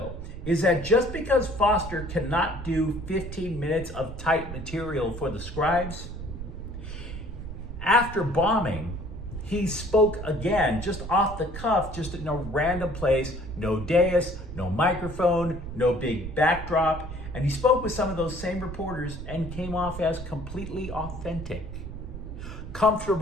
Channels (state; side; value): noise; right; rumble, 9 dB below the sound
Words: is that just because Foster cannot do 15 minutes of tight material for the scribes, after bombing, he spoke again, just off the cuff, just in a random place, no dais, no microphone, no big backdrop, and he spoke with some of those same reporters and came off as completely authentic,